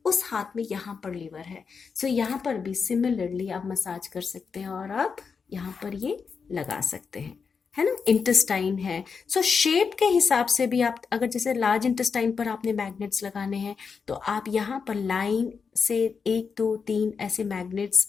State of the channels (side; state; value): right; quieter; 5.6 dB